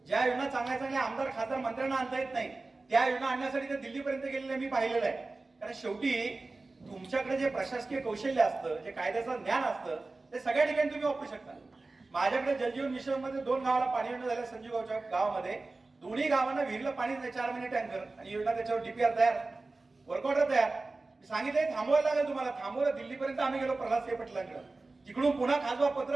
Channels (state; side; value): quieter; left; 3.4 dB